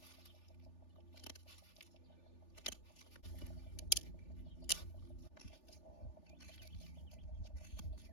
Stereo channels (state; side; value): late; right; 3.4 ms